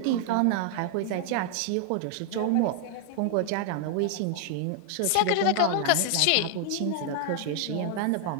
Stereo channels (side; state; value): both; different; correlation 0.00